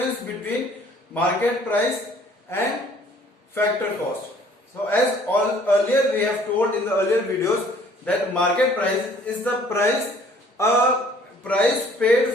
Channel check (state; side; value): normal; both; correlation 0.56